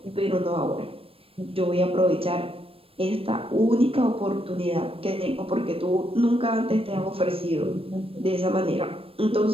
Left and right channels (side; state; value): left; late; 0.28 ms